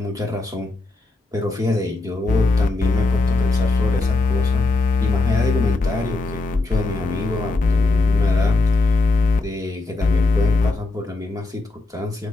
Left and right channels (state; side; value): quieter; right; 3.4 dB